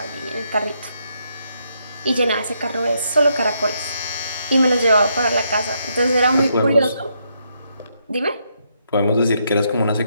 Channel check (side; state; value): both; inverted; correlation -0.77